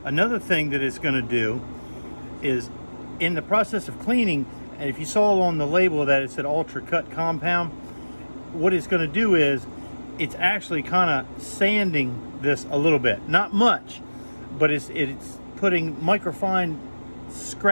that it's going to do is, in the process of cleaning, and if you saw on the label that it said ultra cut compound, what it's going to do is it's actually kind of sanding this a little bit, not much, but it's putting microfine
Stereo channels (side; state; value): both; inverted; correlation -1.00